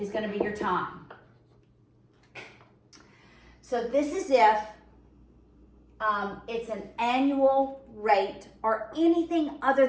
going to be your time. So this is if it's an annual rate or anything other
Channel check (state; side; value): identical; both; correlation 1.00